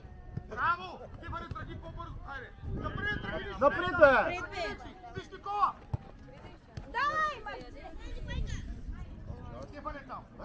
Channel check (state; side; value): identical; both; correlation 1.00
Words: Браво! Ти бъде тръгни по-бързо. Хайде. Напред, тръгни! Напред, бе! Виж Никола! Давай, Марчини!